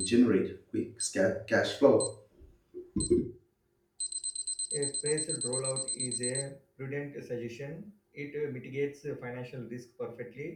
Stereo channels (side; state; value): both; identical; correlation 1.00